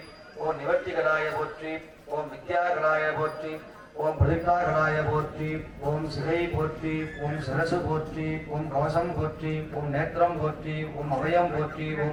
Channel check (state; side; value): identical; both; correlation 1.00